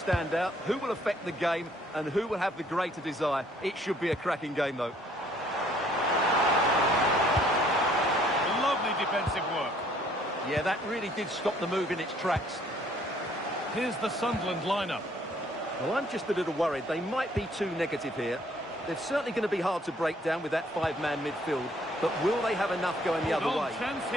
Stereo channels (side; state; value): both; normal; correlation 0.62